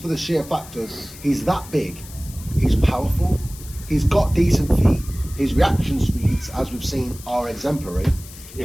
for the sheer fact of he's that big, he's powerful, he's got decent feet, his reaction speeds, as we've seen, are exemplary.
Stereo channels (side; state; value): left; noise; hiss, 17 dB below the sound